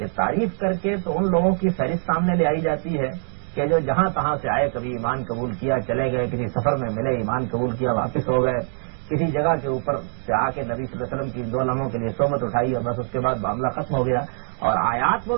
تعریف کر کے تو ان لوگوں کی فہرست سامنے لے آئی جاتی ہے کہ جو جہاں تہاں سے آئے، کبھی ایمان قبول کیا چلے گئے، کسی سفر میں ملے ایمان قبول کیا واپس ہو گئے، کسی جگہ کے اوپر سے آ کے نبی صلی اللہ علیہ وسلم کی 2 لمحوں کے لیے صحبت اٹھائی اور بس اس کے بعد معاملہ ختم ہو گیا، اور آیات وہ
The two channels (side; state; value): left; silent; digital silence